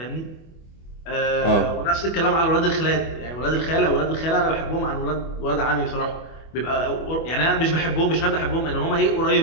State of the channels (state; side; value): late; right; 25 ms